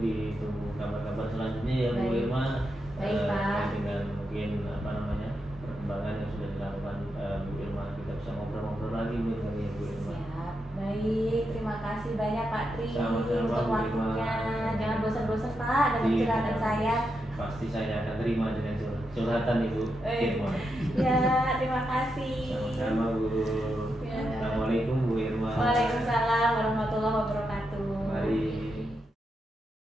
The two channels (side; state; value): both; normal; correlation 0.85